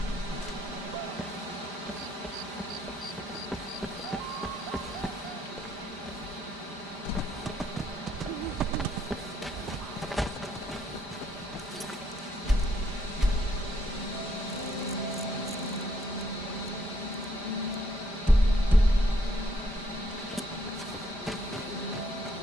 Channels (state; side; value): normal; both; correlation 0.70